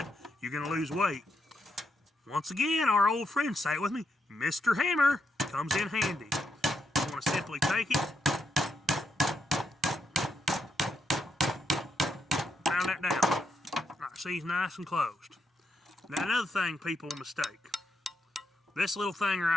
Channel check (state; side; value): normal; both; correlation 0.81